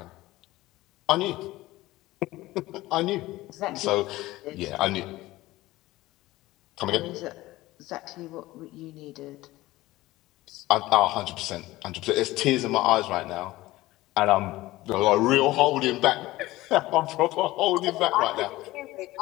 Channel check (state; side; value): quieter; right; 17.9 dB